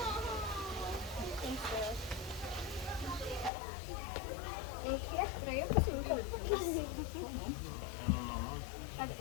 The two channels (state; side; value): drops out; right; at 3.5 s